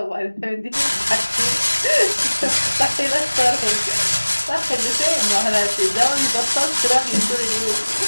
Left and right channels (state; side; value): inverted; both; correlation -1.00